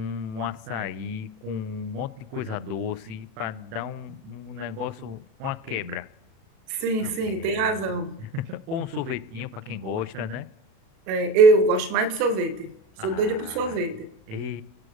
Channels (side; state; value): left; late; 37 ms